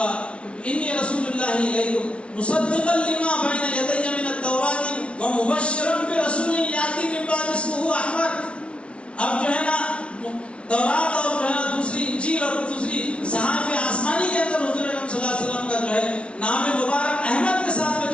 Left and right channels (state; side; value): late; right; 0.060 ms